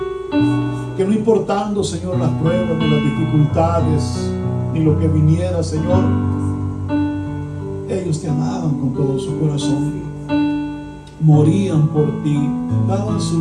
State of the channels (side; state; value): both; identical; correlation 1.00